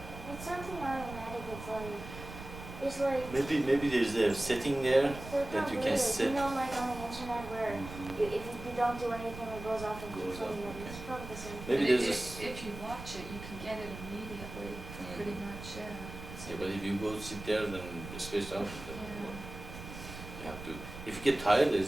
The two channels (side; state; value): right; noise; rumble, 12 dB below the sound